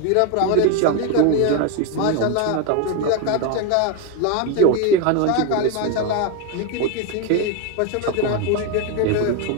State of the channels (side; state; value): both; different; correlation 0.02